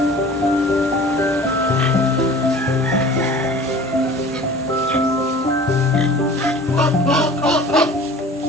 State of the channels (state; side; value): normal; both; correlation 0.43